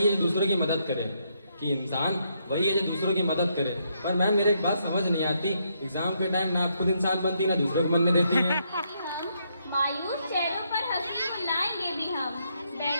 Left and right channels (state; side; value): inverted; both; correlation -0.76